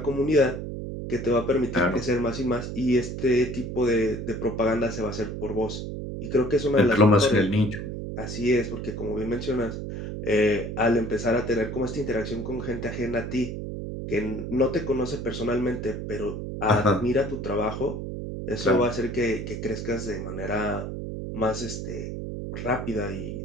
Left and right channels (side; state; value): right; noise; hum, 6 dB below the sound